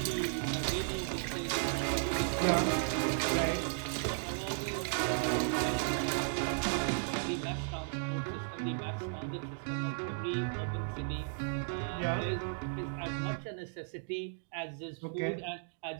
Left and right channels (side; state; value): left; silent; digital silence